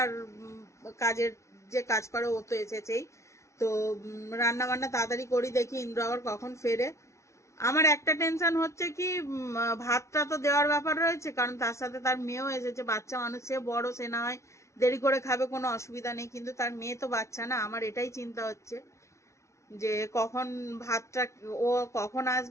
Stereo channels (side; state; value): right; late; 0.14 ms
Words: কাজের যে কাজ করে ও তো এসেছেই। তো রান্না বান্না তাড়াতাড়ি করি, দেখি ইন্দ্র আবার কখন ফেরে। আমার একটা টেনশন হচ্ছে কি, ভাতটা তো দেওয়ার ব্যাপার রয়েছে, কারণ তার সাথে তার মেয়েও এসেছে। বাচ্চা মানুষ, সে বড়, সে না হয় দেরি করে খাবে, কোনো অসুবিধা নেই, কিন্তু তার মেয়ে তো বাচ্চা না। আমার এটাই চিন্তা হচ্ছে যে কখন ভাতটা, ও কখন